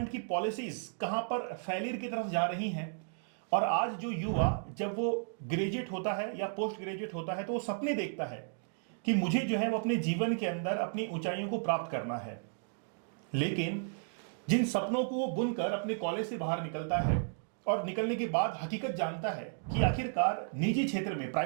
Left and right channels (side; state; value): left; silent; digital silence